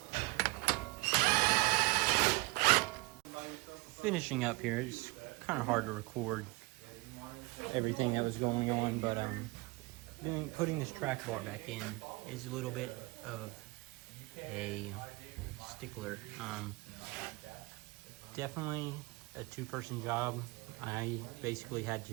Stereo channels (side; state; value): left; quieter; 23.6 dB